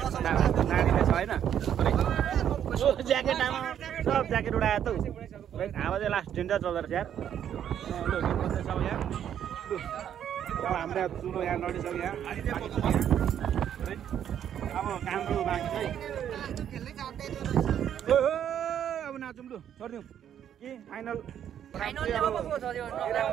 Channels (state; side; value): quieter; left; 9.7 dB